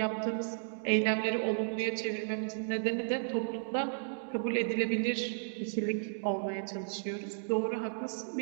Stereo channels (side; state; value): left; silent; digital silence